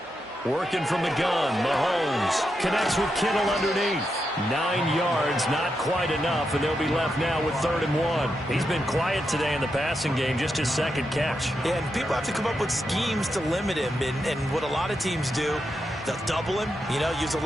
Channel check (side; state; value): both; normal; correlation 0.85